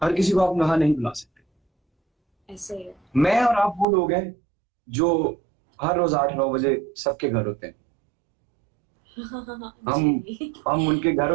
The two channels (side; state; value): left; drops out; at 3.9 s